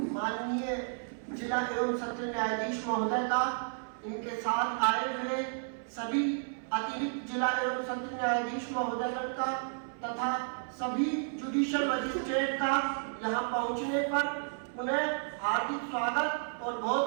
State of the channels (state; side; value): silent; left; 56 dB below the other